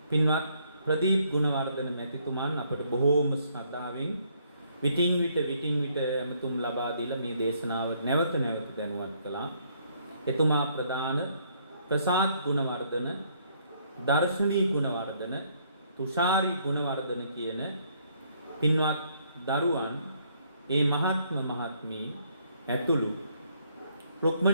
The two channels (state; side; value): inverted; both; correlation -0.68